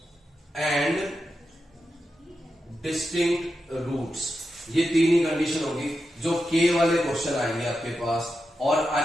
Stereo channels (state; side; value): normal; both; correlation 0.89